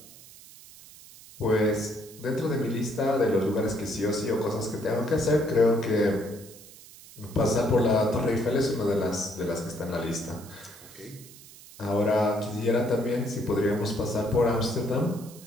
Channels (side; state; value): right; noise; hiss, 20 dB below the sound